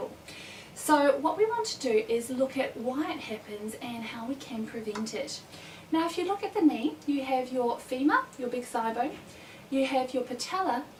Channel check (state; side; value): identical; both; correlation 1.00